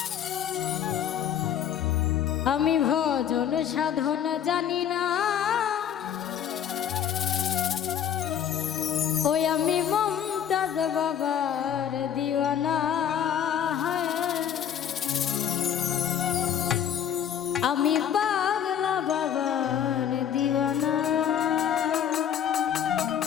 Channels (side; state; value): right; quieter; 9.3 dB